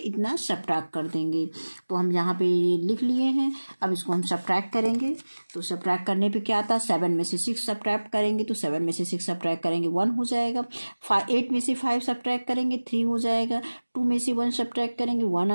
सब्ट्रैक्ट कर देंगे। तो हम यहाँ पे लिख लिए हैं। अब इसको हम सब्ट्रैक्ट करेंगे तो सब्ट्रैक्ट करने पे क्या आता है 7 में से 6 सब्ट्रैक्ट करेंगे तो 7 में से 6 सब्ट्रैक्ट करेंगे 1 हो जाएगा। 8 में से 5 सब्ट्रैक्ट करेंगे 3 हो जाएगा। 2 में से 1 सब्ट्रैक्ट करेंगे 1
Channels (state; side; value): inverted; both; correlation -1.00